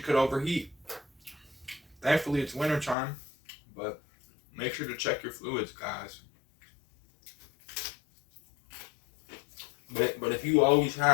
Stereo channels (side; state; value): right; drops out; at 3.0 s